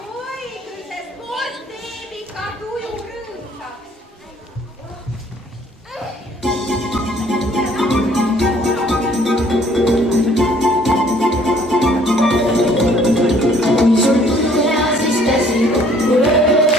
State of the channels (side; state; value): both; normal; correlation 0.59